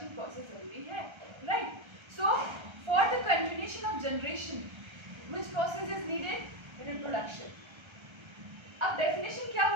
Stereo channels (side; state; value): left; late; 1.3 ms